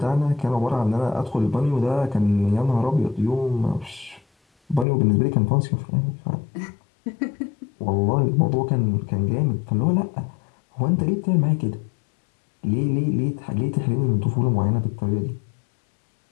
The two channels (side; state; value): right; drops out; at 4.9 s